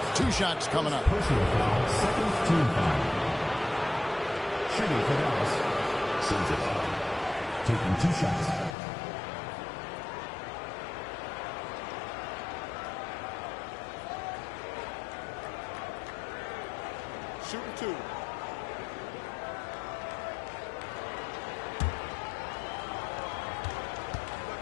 2 shots coming up. Personal foul, 2nd team foul. Shooting for Dallas. Sensabaugh taking 2 shots. Shooting 2.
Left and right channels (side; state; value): right; drops out; at 8.8 s